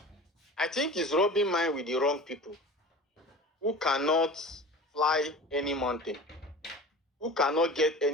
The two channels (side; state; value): both; normal; correlation 0.37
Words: I think he's rubbing mine with the wrong people who cannot fly any mountain, who cannot get